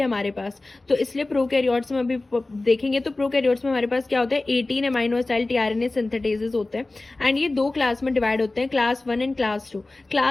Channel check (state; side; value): quieter; right; 3.0 dB